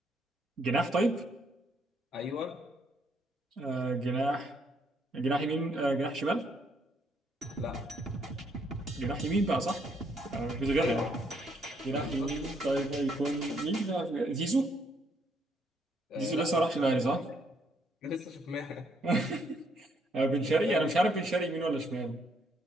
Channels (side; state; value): both; normal; correlation 0.71